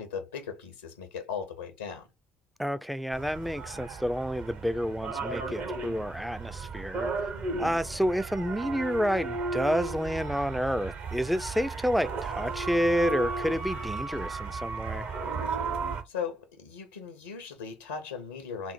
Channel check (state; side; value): normal; both; correlation 0.83